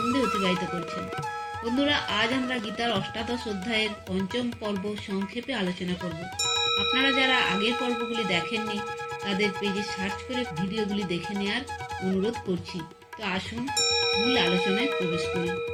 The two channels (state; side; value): identical; both; correlation 1.00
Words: অতিবাহিত করছেন। বন্ধুরা, আজ আমরা গীতার অষ্টাদশ অধ্যায়ের পঞ্চম পর্ব সংক্ষেপে আলোচনা করব। আপনারা যারা আগের পর্বগুলি দেখেননি তাদের পেজে সার্চ করে ভিডিওগুলি দেখে নেওয়ার অনুরোধ করছি। তো আসুন মূল আলোচনায় প্রবেশ করি।